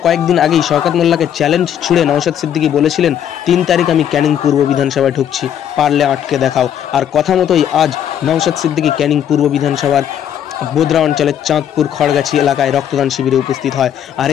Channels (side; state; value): right; quieter; 9.7 dB